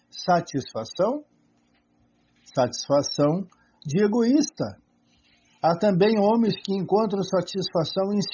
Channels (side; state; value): both; identical; correlation 1.00